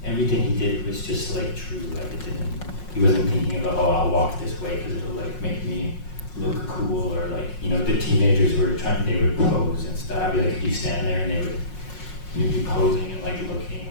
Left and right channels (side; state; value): right; late; 5.5 ms